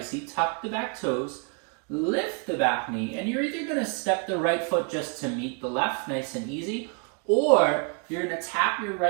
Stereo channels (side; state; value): left; quieter; 36.9 dB